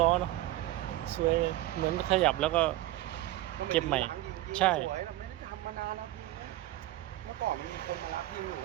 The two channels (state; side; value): quieter; left; 15.9 dB